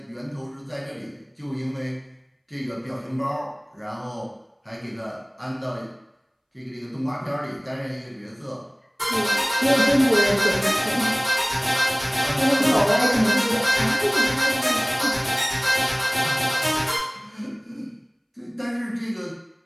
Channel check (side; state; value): both; identical; correlation 1.00